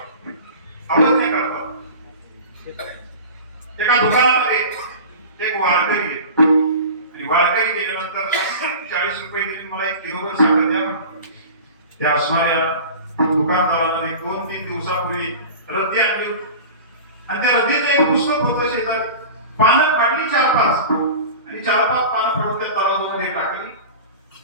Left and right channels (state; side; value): inverted; both; correlation -0.35